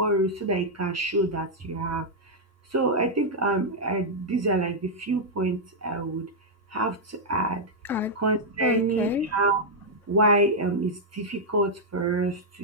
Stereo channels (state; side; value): normal; both; correlation -0.04